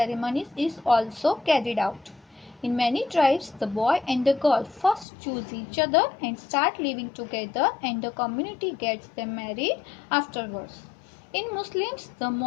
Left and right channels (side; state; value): right; drops out; at 5.1 s